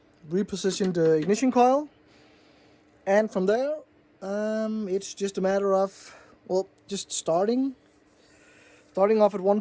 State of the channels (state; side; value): identical; both; correlation 1.00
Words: Repositioned ignition coil, and from there it's just a matter of, well, just starting off at one